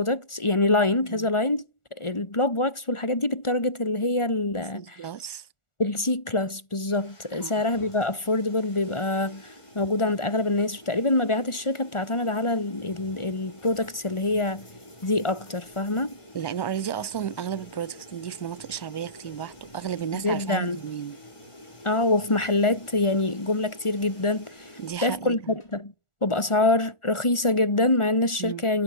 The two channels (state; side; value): late; right; 1.4 ms